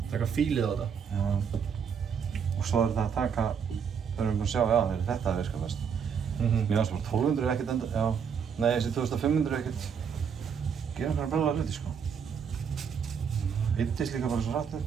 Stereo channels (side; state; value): left; quieter; 6.9 dB